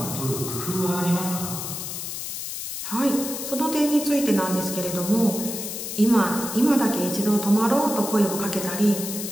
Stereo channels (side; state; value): left; noise; hiss, 6 dB below the sound